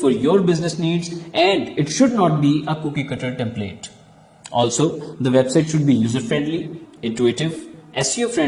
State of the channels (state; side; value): identical; both; correlation 1.00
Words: your business needs and it should not be a cookie cutter template. Also, the website should be user friendly, intuitive, SEO